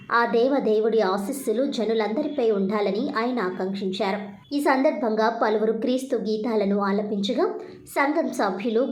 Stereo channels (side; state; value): both; identical; correlation 1.00